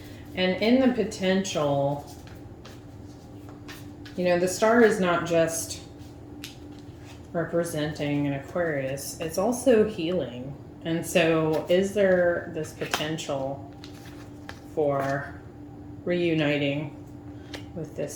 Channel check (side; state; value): both; identical; correlation 1.00